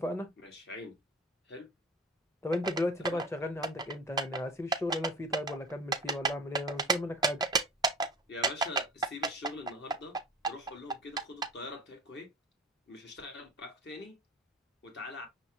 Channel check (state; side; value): normal; both; correlation 0.38